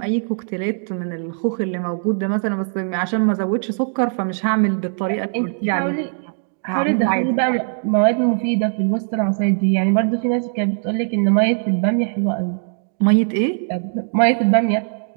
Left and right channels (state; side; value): silent; left; digital silence